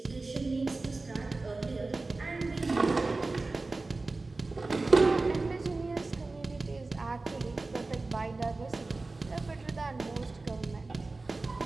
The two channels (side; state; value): left; quieter; 3.4 dB